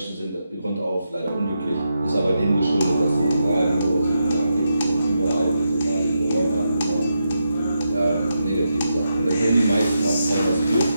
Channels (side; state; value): both; inverted; correlation -0.85